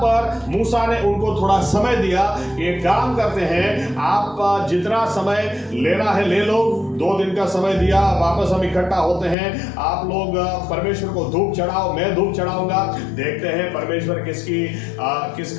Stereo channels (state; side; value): drops out; right; at 9.3 s